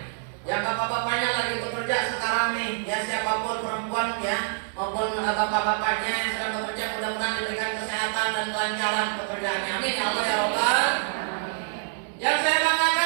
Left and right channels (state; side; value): silent; left; digital silence